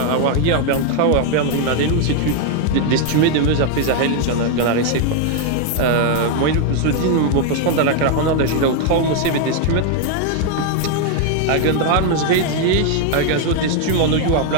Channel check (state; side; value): different; both; correlation 0.00